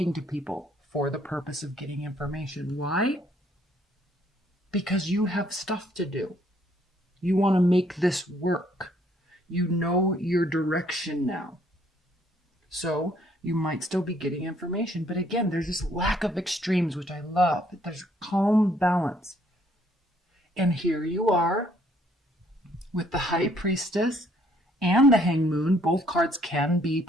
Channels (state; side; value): normal; both; correlation 0.65